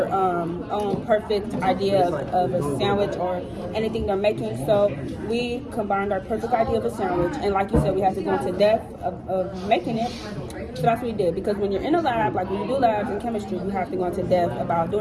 own perfect idea of a sandwich or anything they're making. So we combined our perfect idea of a sandwich, and like you said, we have to go into depth of making it. So that's what we did, because when you're in a lab, like when you do labs in chemistry, you have to go into depth about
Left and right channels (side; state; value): both; identical; correlation 1.00